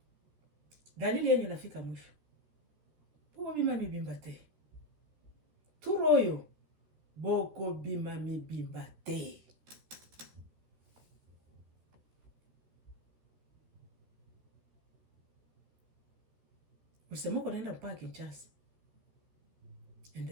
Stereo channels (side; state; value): left; late; 14 ms